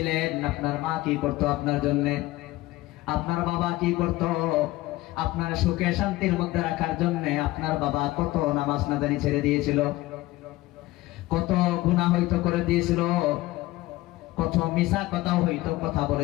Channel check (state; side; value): quieter; right; 18.2 dB